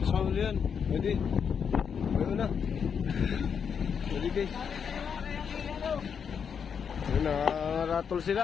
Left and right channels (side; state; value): right; quieter; 6.9 dB